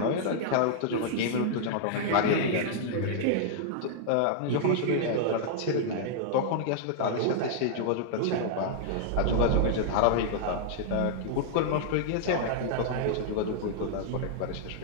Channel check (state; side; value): different; both; correlation -0.01